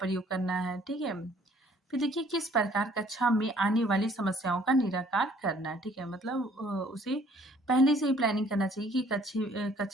करना है। ठीक है, फिर देखिए किस प्रकार कक्षा में आने वाली समस्याओं का निराकार करना है। ठीक है, मतलब उसे पहले से ही प्लानिंग करना चाहिए कि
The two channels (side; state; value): both; normal; correlation 0.59